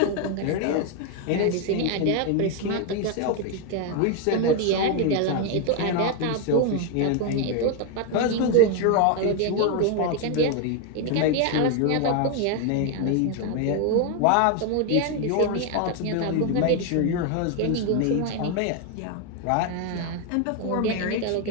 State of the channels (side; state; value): both; different; correlation 0.01